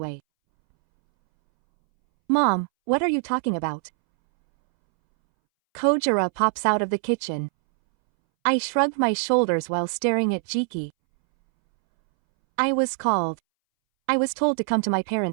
Mom, what are you talking about? Kojira pops out of the kitchen. I shrugged my shoulders while staring at Jiki. I was told to come to my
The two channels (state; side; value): silent; left; 63 dB below the other